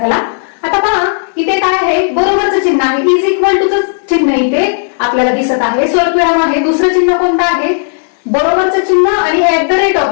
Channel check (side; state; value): right; silent; digital silence